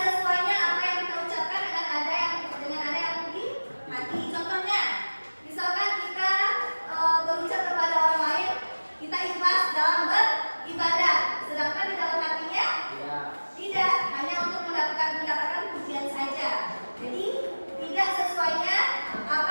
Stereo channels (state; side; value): inverted; both; correlation -1.00